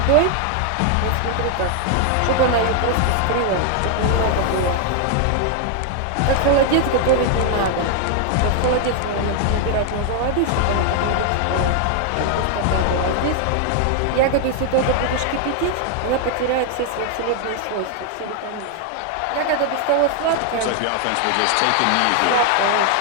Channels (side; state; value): both; different; correlation 0.00